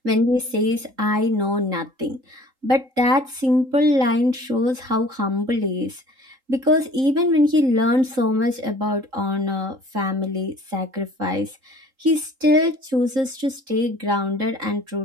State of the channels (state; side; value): late; left; 3.8 ms